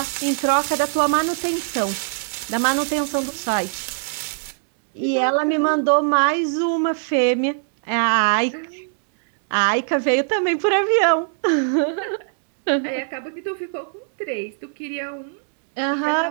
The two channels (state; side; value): silent; left; digital silence